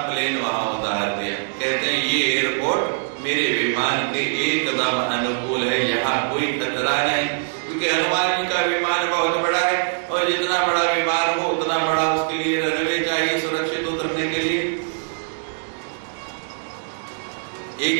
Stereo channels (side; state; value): left; silent; digital silence